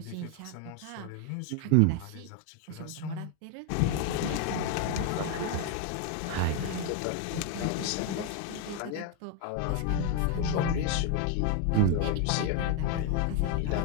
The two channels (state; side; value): different; both; correlation 0.01